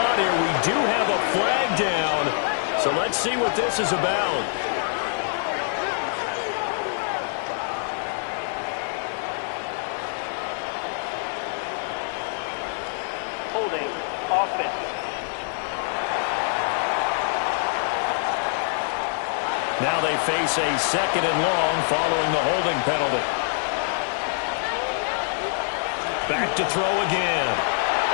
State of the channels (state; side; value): silent; right; digital silence